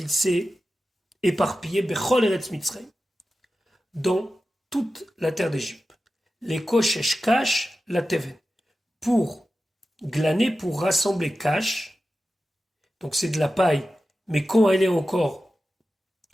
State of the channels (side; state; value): both; normal; correlation 0.93